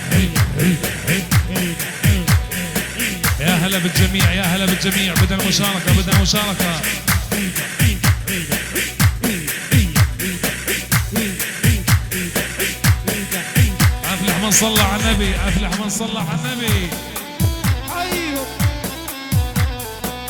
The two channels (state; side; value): identical; both; correlation 1.00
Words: يا هلا بالجميع، يا هلا بالجميع. بدنا مشاركة، بدنا مشاركة. أفلح من صلى على النبي، أفلح من صلى على النبي. ايوه